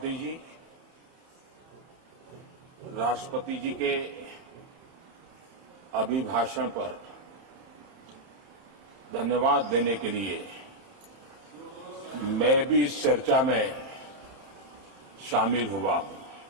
जी, राष्ट्रपति जी के अभिभाषण पर धन्यवाद देने के लिए मैं भी इस चर्चा में शामिल हुआ हूं।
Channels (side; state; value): left; late; 30 ms